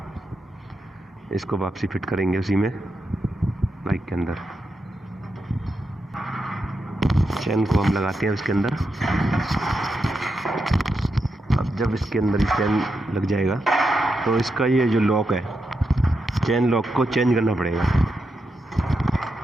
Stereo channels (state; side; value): normal; both; correlation 0.86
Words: इसको वापसी फिट करेंगे उसी में बाइक के अंदर। चेन को हम लगाते हैं उसके अंदर। अब जब इसके अंदर चेन लग जाएगा तो इसका ये जो लॉक है, चेन लॉक को चेंज करना पड़ेगा।